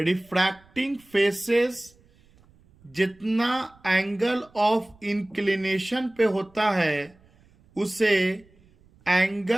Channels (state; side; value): noise; right; rumble, 30 dB below the sound